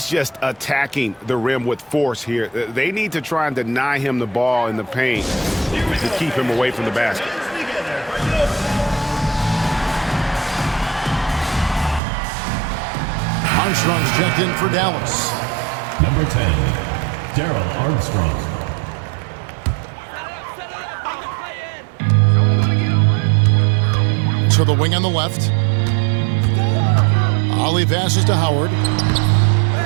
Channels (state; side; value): drops out; left; at 12.0 s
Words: just attacking the rim with force here. They need to try and deny him the ball in the paint to keep him away from the basket. Armstrong's checked in for Dallas. Number 10, Daryl Armstrong. To the wing on the left. Ollie passes to Howard.